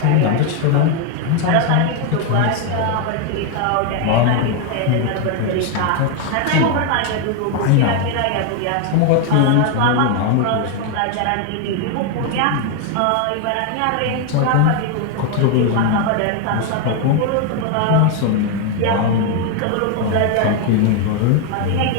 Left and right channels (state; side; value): different; both; correlation 0.01